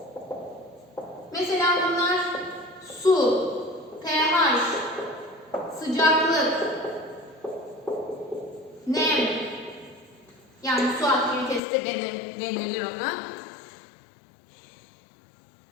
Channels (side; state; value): right; drops out; at 11.6 s